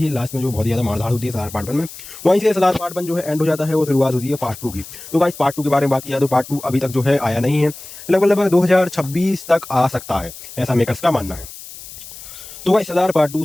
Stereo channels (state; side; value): noise; left; hiss, 15 dB below the sound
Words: है। लास्ट में जो बहुत ज़्यादा मारधाड़ होती है सलार पार्ट 1 में, वहीं से सलार पार्ट 1 जो है एंड हो जाता है, वो शुरुआत होती है पार्ट 2 की। तो गाइस पार्ट 2 के बारे में बात किया तो पार्ट 2 अभी तक जो है आया नहीं है, लगभग 2026 तक आ सकता है, ऐसा मेकर्स का मानना है। तो गाइस सलार पार्ट 2